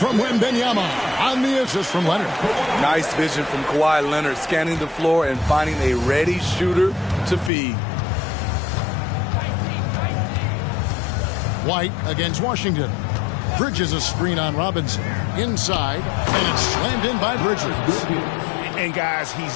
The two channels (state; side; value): drops out; right; at 7.5 s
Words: Wembanyama on the assist from Leonard. Nice vision from Kawhi Leonard, scanning the floor and finding a ready shooter to feed. White against Washington. Bridges a screen on Robinson. Inside, and it's slammed in by Bridges. And guys, he's